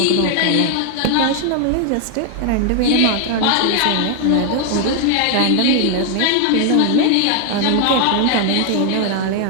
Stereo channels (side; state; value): both; different; correlation 0.00